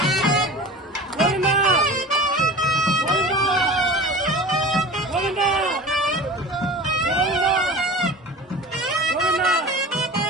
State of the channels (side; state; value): both; normal; correlation 0.36